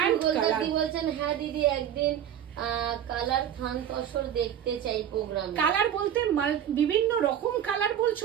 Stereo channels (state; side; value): quieter; left; 9.9 dB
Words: colour. বলছেন হ্যাঁ দিদি একদিন কালার থান তসর দেখতে চাই প্রোগ্রাম। কালার বলতে বিভিন্ন রকম কালার বলছো,